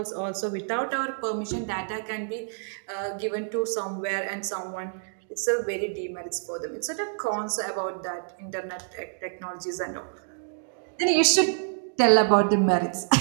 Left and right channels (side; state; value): left; silent; digital silence